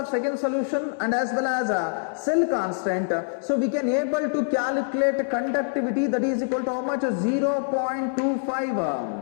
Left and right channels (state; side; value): silent; right; digital silence